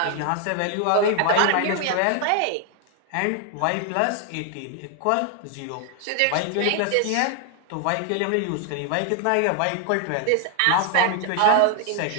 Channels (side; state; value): both; different; correlation 0.00